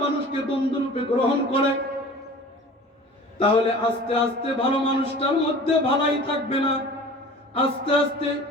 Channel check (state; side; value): normal; both; correlation 0.42